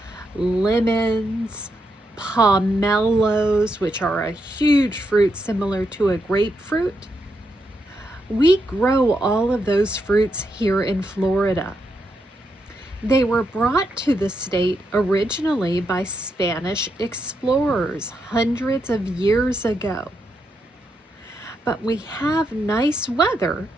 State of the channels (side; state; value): both; normal; correlation 0.82